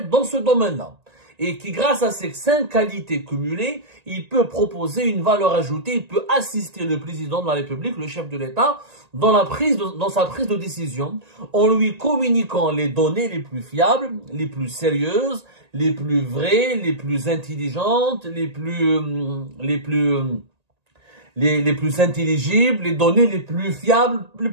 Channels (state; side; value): late; left; 1.8 ms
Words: dans ce domaine-là. Et qui, grâce à ces 5 qualités cumulées, il peut proposer une valeur ajoutée, il peut assister le président de la République, le chef de l'État, dans sa prise de décision, en lui communiquant les données les plus fiables, les plus sérieuses, les plus vraies, les plus intelligentes, les plus intelligibles, les données les plus fiables